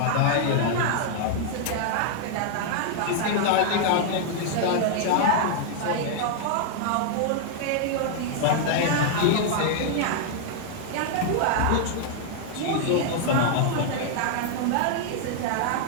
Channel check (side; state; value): both; different; correlation -0.01